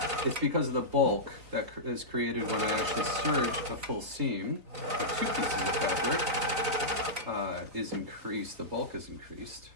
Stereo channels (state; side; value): late; left; 4.2 ms